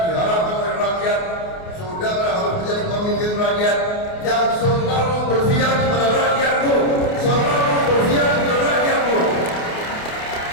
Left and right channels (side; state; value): right; late; 28 ms